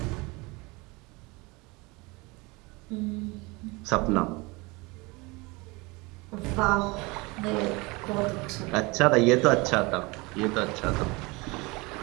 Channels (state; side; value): quieter; left; 25.5 dB